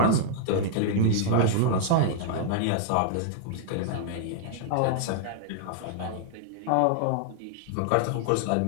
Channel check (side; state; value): both; different; correlation -0.01